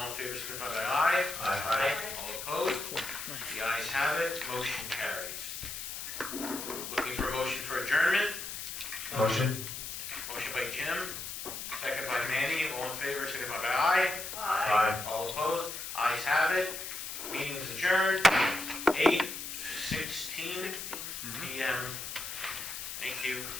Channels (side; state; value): left; noise; hiss, 7 dB below the sound